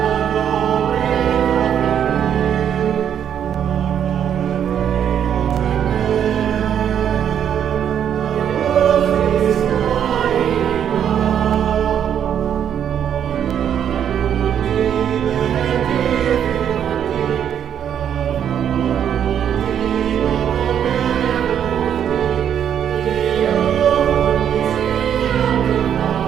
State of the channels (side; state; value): left; quieter; 9.1 dB